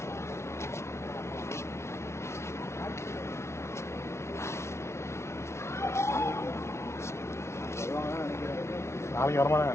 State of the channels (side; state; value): right; late; 0.13 ms